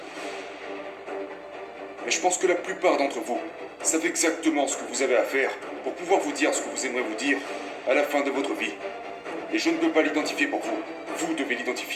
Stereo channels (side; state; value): both; identical; correlation 1.00